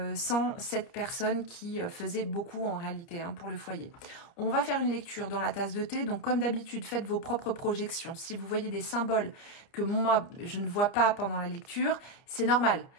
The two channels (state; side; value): late; right; 30 ms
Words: cette personne qui faisait beaucoup en réalité hein, pour le foyer. On va faire une lecture dans la tasse de thé, donc comme d'habitude faites vos propres projections. Si vous voyez des symboles que moi je ne vois pas pendant la lecture, c'est normal.